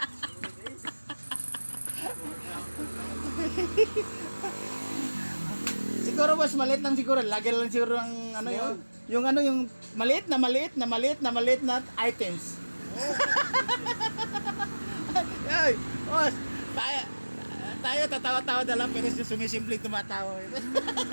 Siguro mas maliit lang siguro. Lagi lang siguro ang ano yung ano yung maliit na items. Ay, boss, tayo tatawa-tawa na lang pero sumisimpleng tumatawa.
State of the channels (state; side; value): inverted; both; correlation -1.00